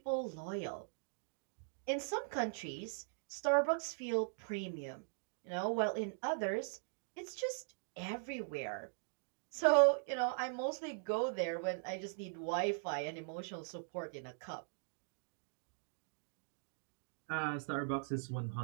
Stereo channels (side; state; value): left; silent; digital silence